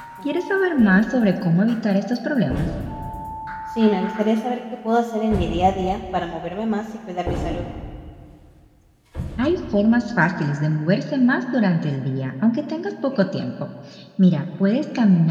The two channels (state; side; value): identical; both; correlation 1.00